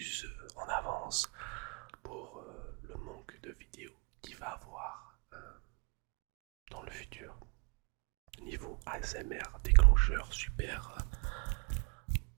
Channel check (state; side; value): quieter; left; 32.3 dB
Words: en avance pour le manque de vidéos qu'il va avoir dans le futur. Niveau ASMR, déclencheur, super,